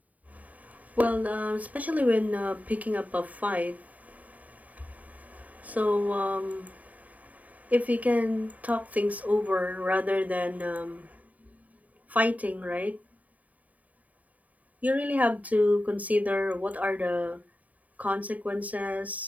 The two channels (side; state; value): left; late; 0.072 ms